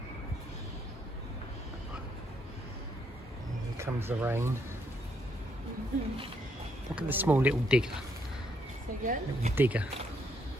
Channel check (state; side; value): normal; both; correlation 0.73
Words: Here comes the rain. Look at the small little digger. Again? Little digger.